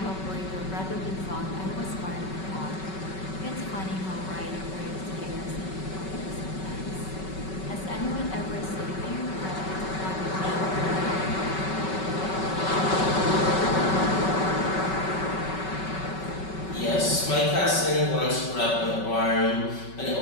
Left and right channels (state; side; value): late; right; 5.3 ms